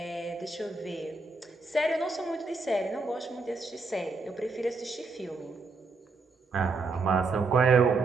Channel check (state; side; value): quieter; left; 3.8 dB